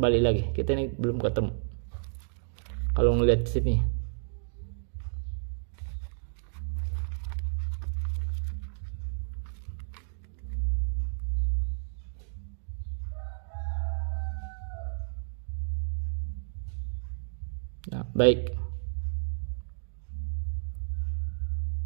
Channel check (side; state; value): left; silent; digital silence